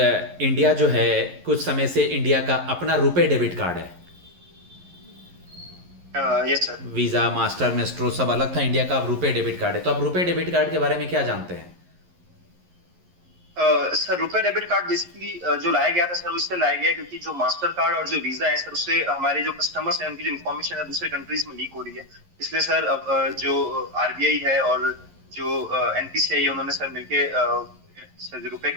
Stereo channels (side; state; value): left; late; 11 ms